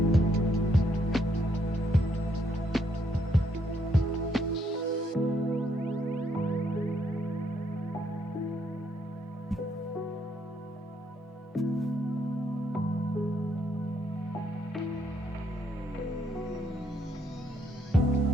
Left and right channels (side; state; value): both; normal; correlation 0.73